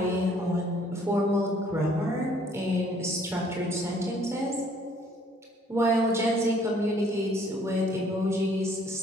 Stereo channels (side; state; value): both; normal; correlation 0.60